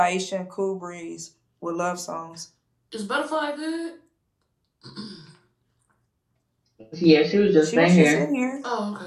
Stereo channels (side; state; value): both; identical; correlation 1.00